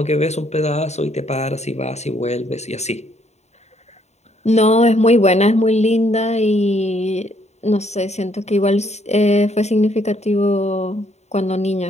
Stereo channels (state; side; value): late; right; 0.32 ms